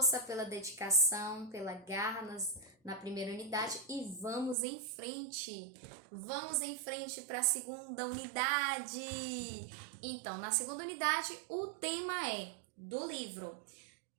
pela dedicação, pela garra na primeira unidade e vamos em frente! Vamos em frente para a segunda unidade! Então, na segunda unidade, o tema é do livro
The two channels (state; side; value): drops out; left; at 4.5 s